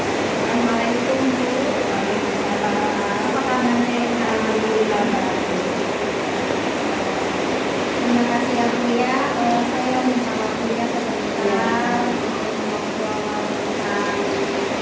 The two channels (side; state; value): both; identical; correlation 1.00